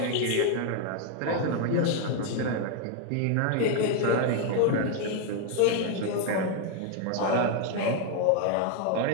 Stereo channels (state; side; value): different; both; correlation 0.00